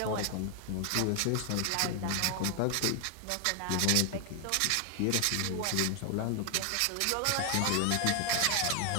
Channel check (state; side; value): different; both; correlation 0.00